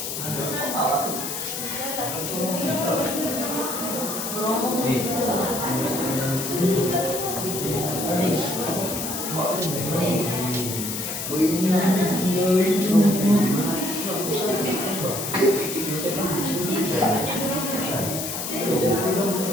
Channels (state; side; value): noise; left; hiss, 5 dB below the sound